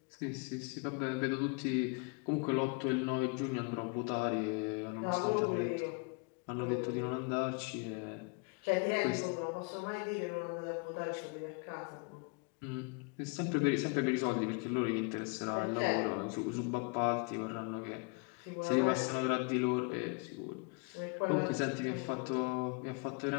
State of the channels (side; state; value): right; quieter; 33.4 dB